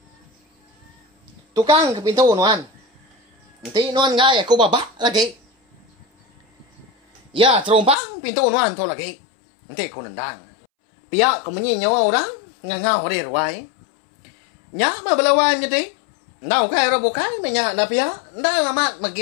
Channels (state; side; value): drops out; right; at 8.0 s